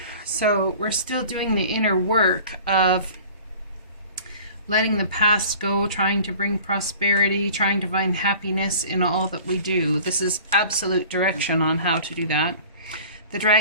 So we're still doing the inner work of letting the past go, trying to bring prosperity, trying to find happiness in all that we do. This is absolute direction on how to do that. The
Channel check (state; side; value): inverted; both; correlation -0.45